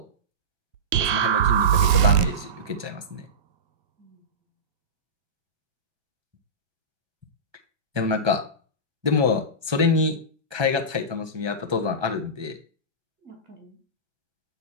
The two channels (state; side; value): late; left; 1.7 ms